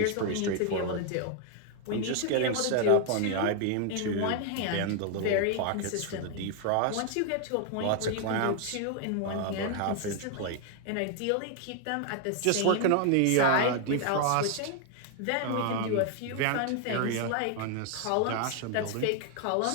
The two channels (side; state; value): both; different; correlation 0.00